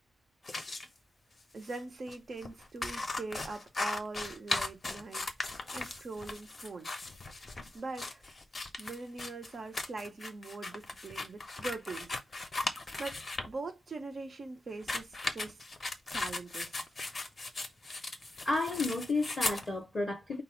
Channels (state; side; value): normal; both; correlation 0.88